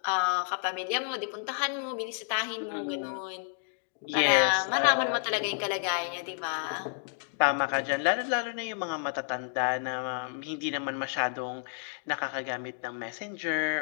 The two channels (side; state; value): right; silent; digital silence